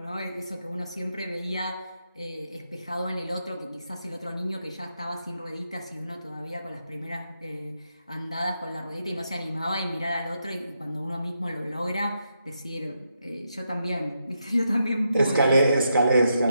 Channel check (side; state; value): both; inverted; correlation -0.82